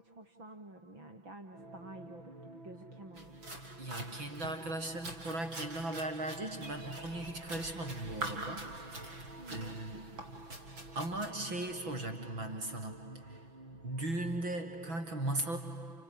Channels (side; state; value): left; late; 6.0 ms